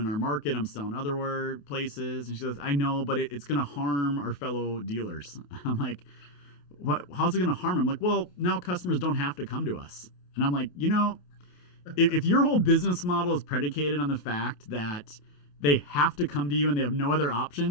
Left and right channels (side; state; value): right; late; 28 ms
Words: our market. I'm selling other places. And she says, I know, but it's going to harm our fellow dealers. I'm like, what? How's it going to harm them? I'm like, well, now customers don't have to come to us. And I'm like, if your whole business model is predicated on the fact that they have to come to you and they have no other